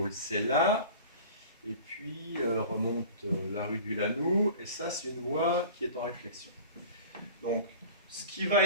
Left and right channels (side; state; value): both; inverted; correlation -0.41